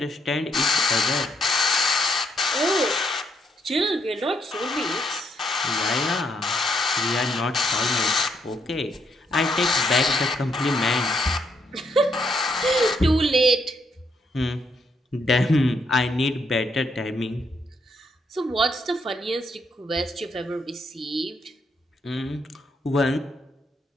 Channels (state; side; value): normal; both; correlation 0.75